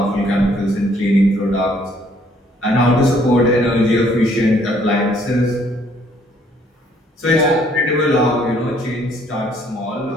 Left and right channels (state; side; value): normal; both; correlation 0.64